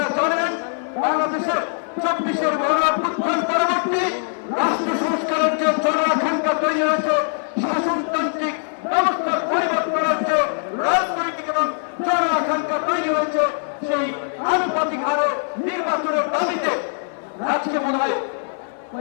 জানেন বাংলাদেশের 24-এর গণঅভ্যুত্থান পরবর্তী রাষ্ট্র সংস্কারের যে জনআকাঙ্ক্ষা তৈরি হয়েছে, শাসনতান্ত্রিক ব্যবস্থার পরিবর্তনের যে রাজনৈতিক এবং জনআকাঙ্ক্ষা তৈরি হয়েছে, সেই আনুপাতিক হারে নির্বাচনের দাবিতে আজকে মনে হয়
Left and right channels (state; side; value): silent; right; 64 dB below the other